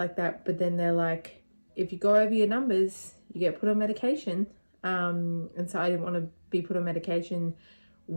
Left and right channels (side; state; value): both; inverted; correlation -1.00